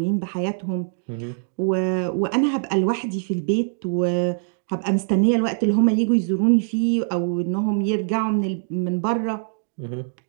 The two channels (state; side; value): silent; left; digital silence